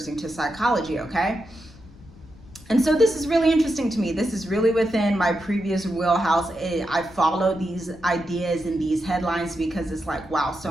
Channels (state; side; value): noise; left; rumble, 21 dB below the sound